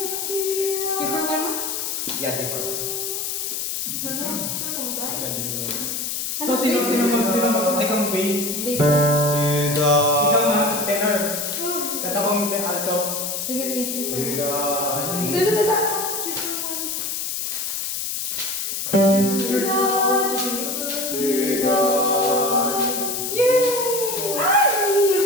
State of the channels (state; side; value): noise; left; hiss, 3 dB below the sound